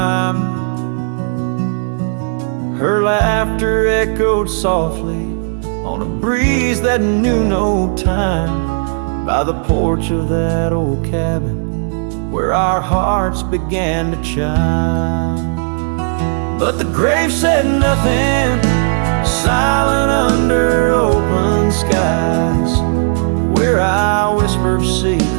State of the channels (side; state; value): left; silent; digital silence